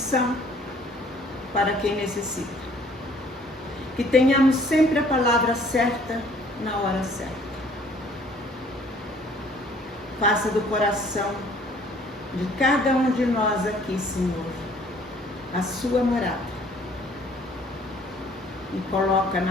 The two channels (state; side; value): normal; both; correlation 0.57